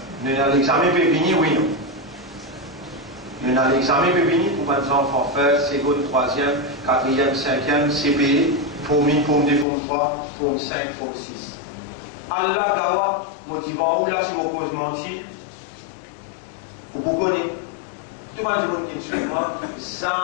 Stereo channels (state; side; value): drops out; right; at 9.7 s